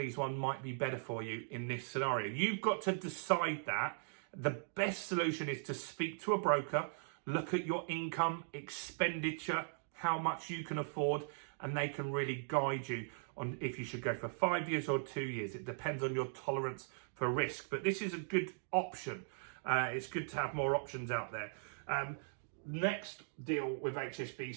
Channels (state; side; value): silent; left; digital silence